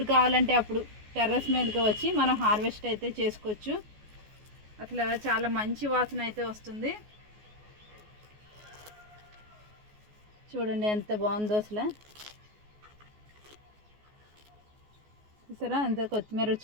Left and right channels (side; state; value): left; late; 14 ms